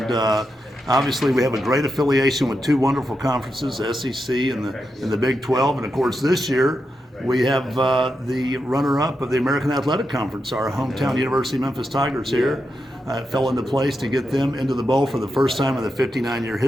Obviously, we have a great affiliation with two wonderful conferences, SEC and the Big 12, and of course this year we have the runner-up of the American Athletic Conference, our hometown University of Memphis Tigers here. It fell into place to get them into the bowl for the first time in the 59-year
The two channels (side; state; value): both; normal; correlation 0.86